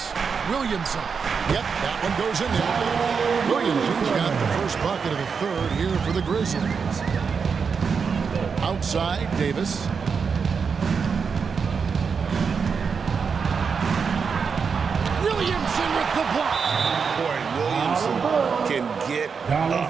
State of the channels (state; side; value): quieter; left; 5.8 dB